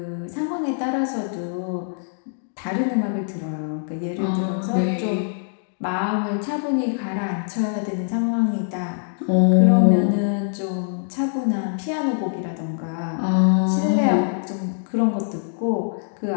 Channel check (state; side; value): silent; right; digital silence